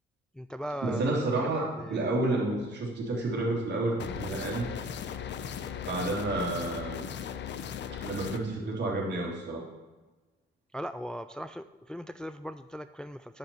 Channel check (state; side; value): normal; both; correlation 0.50